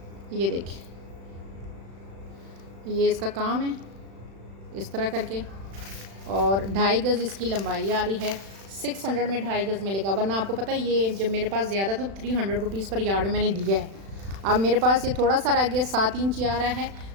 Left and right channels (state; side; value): late; left; 36 ms